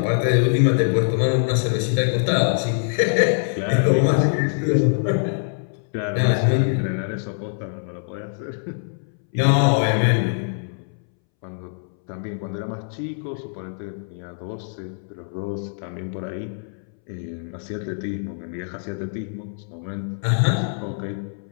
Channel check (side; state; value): right; silent; 63 dB below the other